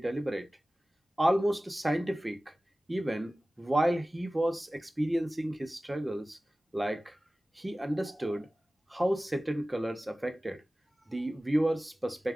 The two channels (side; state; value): both; normal; correlation 0.97